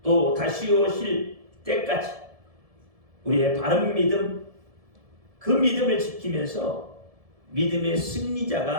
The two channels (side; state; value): left; late; 1.7 ms